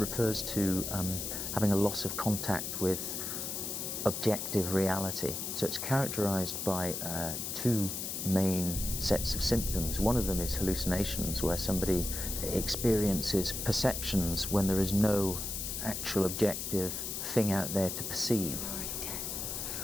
to having a loss of contact with objective reality. So it's characterized by two main sets of symptoms. One of them is hallucinations, where somebody experiences perceptions when there is no actual objective thing out there to perceive. You're already dead.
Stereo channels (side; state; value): left; noise; hiss, 4 dB below the sound